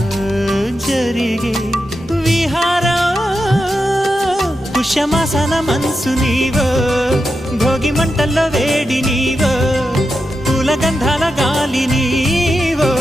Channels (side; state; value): both; normal; correlation 0.88